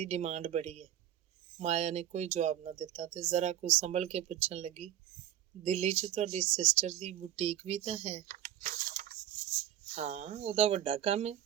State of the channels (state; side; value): quieter; left; 11.6 dB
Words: ਡਿਮਾਂਡ ਬੜੀ ਹੈ। ਮਾਇਆ ਨੇ ਕੋਈ ਜਵਾਬ ਨਾ ਦਿੱਤਾ ਤੇ ਜ਼ਰਾ ਕੁ ਸੰਭਲ ਕੇ ਪੁੱਛਣ ਲੱਗੀ, ਦਿੱਲੀ 'ਚ ਤੁਹਾਡੀ ਸਿਸਟਰ ਦੀ ਬੁਟੀਕ ਵੀ ਤਾਂ ਹੈ? ਹਾਂ, ਉਹਦਾ ਵੱਡਾ ਕੰਮ ਹੈ।